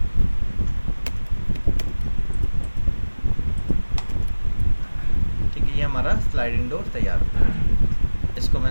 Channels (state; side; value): inverted; both; correlation -1.00